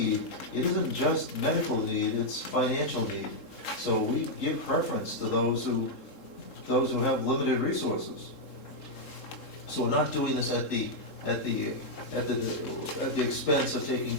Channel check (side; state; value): right; late; 3.7 ms